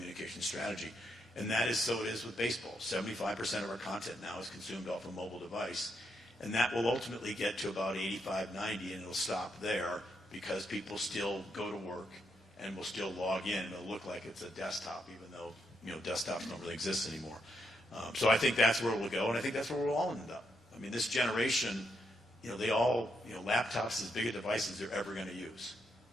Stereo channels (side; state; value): both; normal; correlation 0.80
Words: strategy. And that is so it is with baseball. 75% of our content now is consumed off a mobile device. And that will ultimately get to about 85, 90, and it'll stop there because people still go to work and will still log in. It'll look like it's a desktop, even though, you know, desktops don't really exist anymore. So I think that's where it will go, and I think that's where we'll all end up. I mean, this generation, you know, they all, you know, laptops as big a device as they're ever going to use.